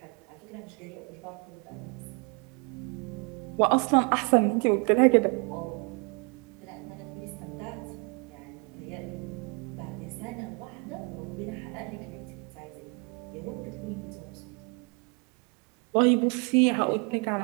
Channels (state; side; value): quieter; left; 33.6 dB